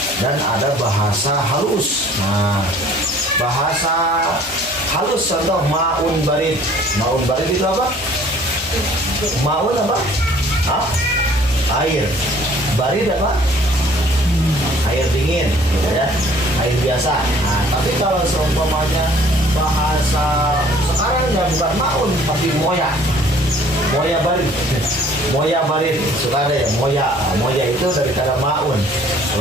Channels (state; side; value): normal; both; correlation 0.55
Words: dan ada bahasa halus. Nah, bahasa halus contoh maun barid. Maun barid itu apa? Maun apa? Air. Barid apa? Air dingin, gitu ya, air biasa. Nah, tapi kalau seumpamanya bahasa sekarang ya bukan maun tapi moya barid, suka ada ya moya itu dari kata maun.